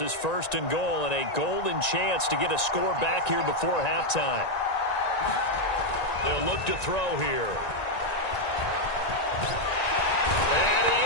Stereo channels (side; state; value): right; late; 1.9 ms